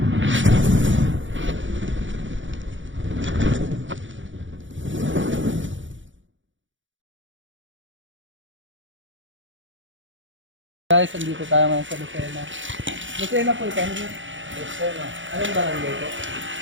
Guys, andito tayo ngayon sa Lucena. Lucena po ito. Lucena. Anong barangay po?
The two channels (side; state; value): left; late; 0.56 ms